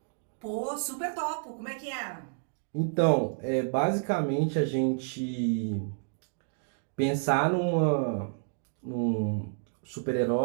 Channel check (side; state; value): left; silent; digital silence